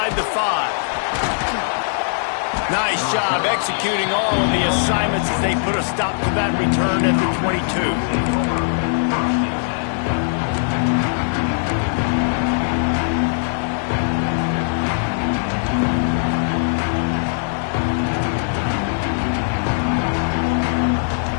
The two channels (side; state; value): right; silent; digital silence